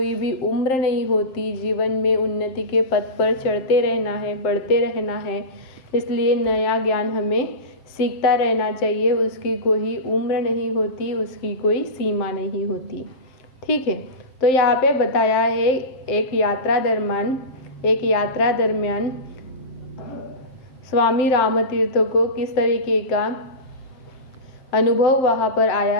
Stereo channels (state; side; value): late; right; 7.7 ms